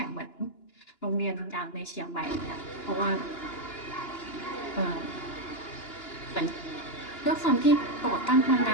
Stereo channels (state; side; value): late; right; 2.9 ms